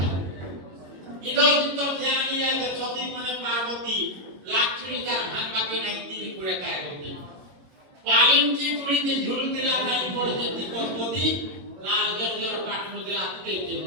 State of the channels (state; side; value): late; left; 22 ms